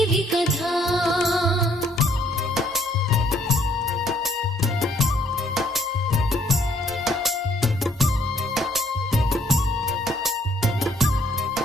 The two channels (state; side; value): normal; both; correlation 0.65